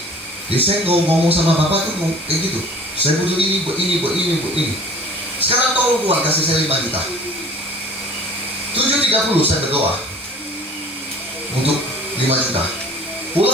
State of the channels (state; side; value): normal; both; correlation 0.47